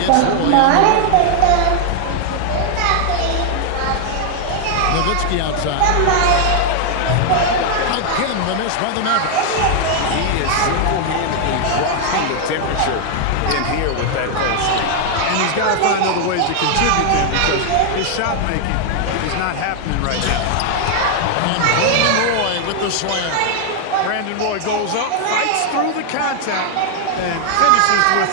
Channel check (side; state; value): both; different; correlation 0.00